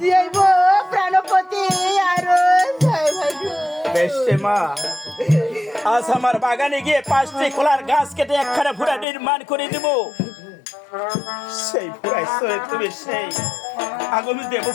যাইব প্রাণপতি আরো বেশে মা। আজ আমার বাগানে গিয়ে 5টি কলার গাছ কেটে একখানা ভুরা নির্মাণ করে দেব। সেই ভুরাই চলে তুমি সেই আগামী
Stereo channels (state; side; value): drops out; right; at 9.1 s